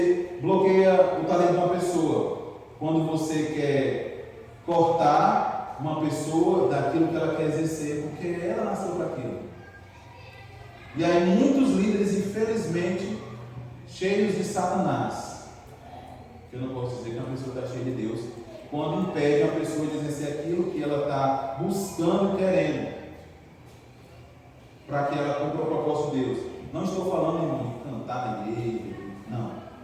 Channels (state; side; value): identical; both; correlation 1.00